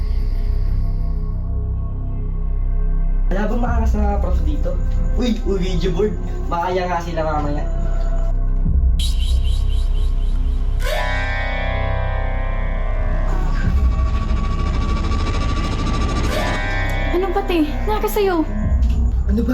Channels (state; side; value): identical; both; correlation 1.00